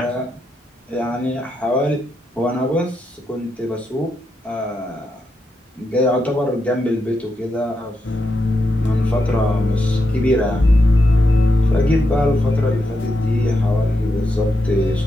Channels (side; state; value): both; normal; correlation 0.84